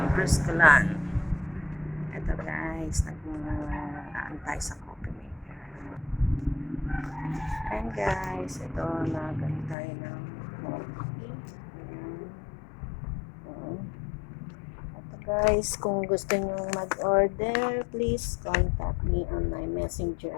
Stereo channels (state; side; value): drops out; right; at 9.8 s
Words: Bruscalan. Ito guys, nag-aantay sa coffee maker. And guys, ito, nag-aantay ng coffee. Guys, kung gusto nyo mag-order, please contact me on my